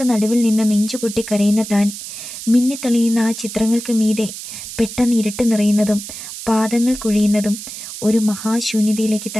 നടുവിൽ നിന്ന് നെഞ്ചുപൊട്ടി കരയുന്ന താൻ. മിന്നിത്തെളിയുന്ന ആ ചിത്രങ്ങൾക്ക് മീതെ പെട്ടെന്ന് ഇരുട്ട് നിറയുന്നതും പാദങ്ങൾ കുഴിയുന്നതും ഒരു മഹാശൂന്യതയിലേക്ക്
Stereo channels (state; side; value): noise; right; hiss, 10 dB below the sound